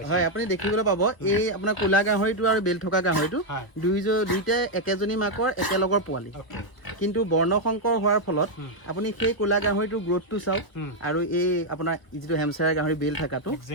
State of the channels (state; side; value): late; right; 1.2 ms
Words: দেখিবলৈ পাব এই আপোনাৰ ক'লা গাহৰিটো আৰু বেল থকা গাহৰিটো দুইটাই একেজনী মাকৰ একেলগৰ পোৱালি কিন্তু বৰ্ণশংকৰ হোৱাৰ ফলত আপুনি সেই ক'লা গাহৰিটোৰ গ্ৰোথটো চাওক আৰু এই আপোনাৰ যিটো হেমচায়াৰ গাহৰি বেল থকাটো